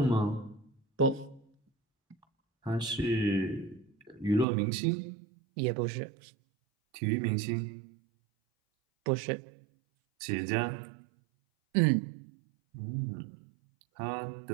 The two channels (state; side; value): drops out; left; at 4.5 s